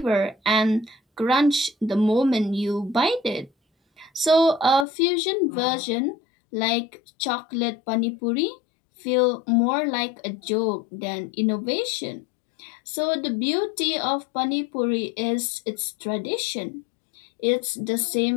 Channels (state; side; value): drops out; right; at 4.9 s